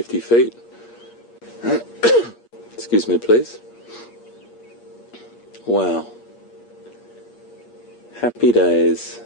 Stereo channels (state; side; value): late; right; 8.5 ms